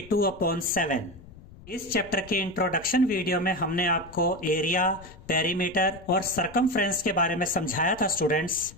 इस चैप्टर के इंट्रोडक्शन वीडियो में हमने आपको एरिया, पेरीमीटर और सरकमफ्रेंस के बारे में समझाया था स्टूडेंट्स।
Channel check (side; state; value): left; noise; rumble, 20 dB below the sound